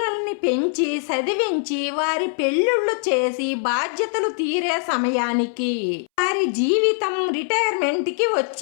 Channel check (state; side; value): silent; right; 64 dB below the other